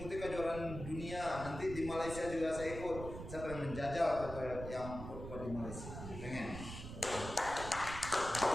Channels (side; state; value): right; noise; rumble, 9 dB below the sound